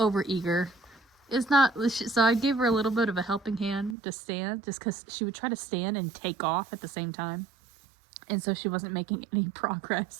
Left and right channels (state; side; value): drops out; left; at 4.0 s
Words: It's not, so I gave her a little bit of a helping hand to stand, just because she would try to stand and take off at the same time. And so she wasn't making any